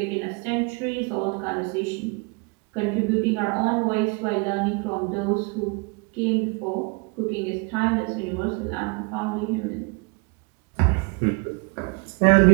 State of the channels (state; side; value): quieter; left; 31.5 dB